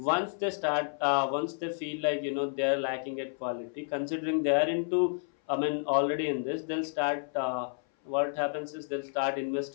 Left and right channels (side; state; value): right; silent; 57 dB below the other